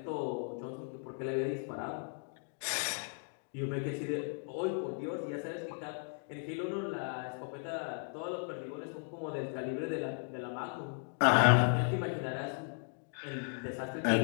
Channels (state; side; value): silent; right; 54 dB below the other